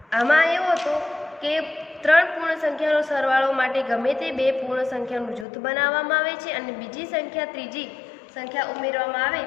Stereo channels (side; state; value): right; drops out; at 5.5 s